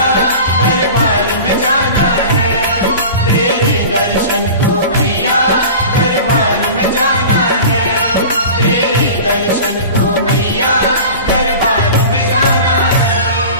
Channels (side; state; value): both; inverted; correlation -0.36